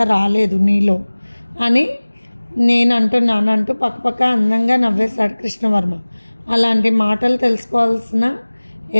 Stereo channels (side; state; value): both; inverted; correlation -1.00